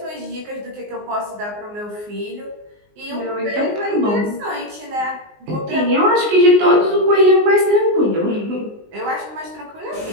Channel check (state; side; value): late; left; 19 ms